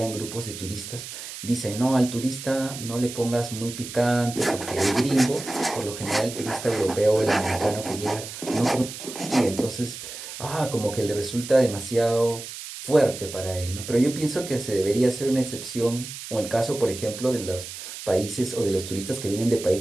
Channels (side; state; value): right; noise; hiss, 10 dB below the sound